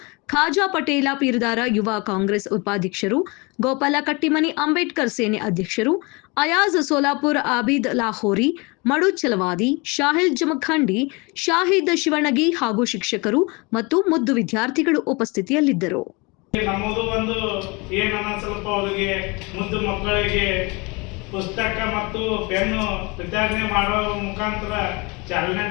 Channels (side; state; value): right; quieter; 27.4 dB